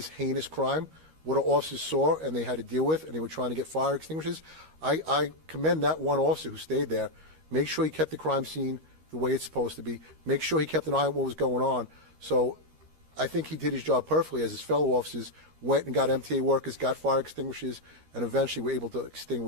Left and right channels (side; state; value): left; late; 13 ms